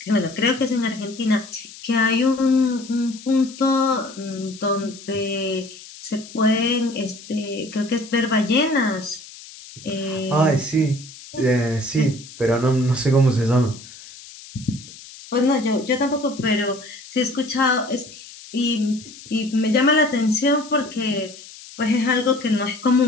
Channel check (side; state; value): left; noise; hiss, 17 dB below the sound